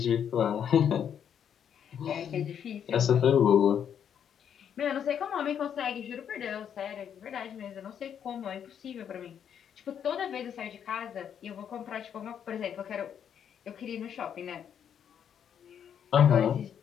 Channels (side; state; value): right; quieter; 8.6 dB